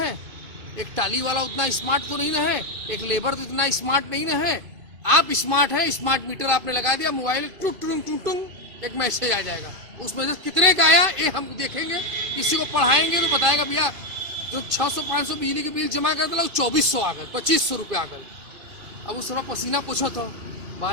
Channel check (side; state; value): left; late; 2.5 ms